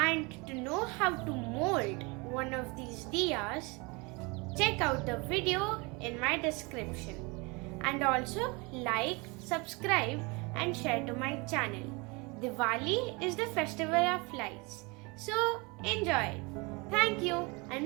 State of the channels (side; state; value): left; quieter; 27.7 dB